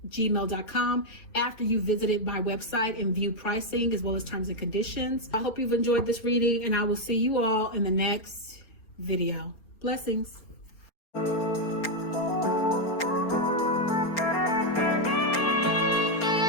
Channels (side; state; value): right; late; 4.3 ms